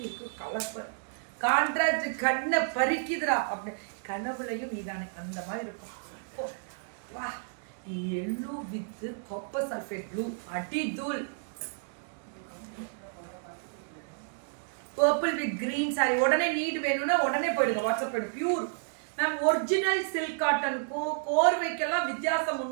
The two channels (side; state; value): left; silent; digital silence